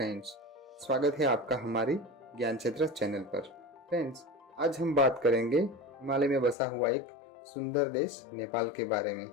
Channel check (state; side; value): drops out; right; at 6.6 s